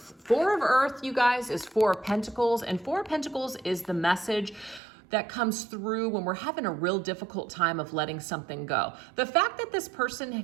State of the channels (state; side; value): drops out; left; at 4.8 s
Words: Four of Earth, you guys, is Four of Pentacles, and Four of Pentacles is the message that comes through when we're having a real difficult time of letting something go. The fact that this person